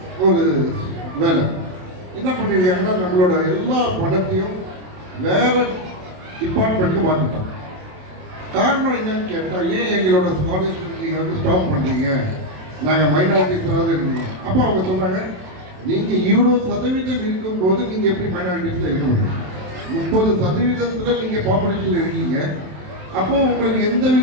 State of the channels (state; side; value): late; left; 27 ms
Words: ஒரு வேலை என்ன பண்ணியிருக்காங்கன்னா நம்மளோட எல்லா பணத்தையும் வேற டிபார்ட்மெண்ட்டுக்கு மாற்றிட்டாங்க. காரணம் என்னன்னு கேட்டால், ஏன் எங்களோட ஸ்காலர்ஷிப் நீங்கள் வந்து ஸ்டாப் பண்ணுறீங்க, நாங்கள் மைனாரிட்டிஸாவது இருக்கணும். அப்போ அவங்க சொல்கிறாங்க, நீங்கள் இவ்வளோ சதவீதம் இருக்கும்போது நீங்கள் எப்படி மைனாரிட்டிஸில் இருக்க முடியும்? 30% நீங்கள் பாப்புலேஷனில் இருக்கீங்க. அப்போ உங்களுக்கு எந்த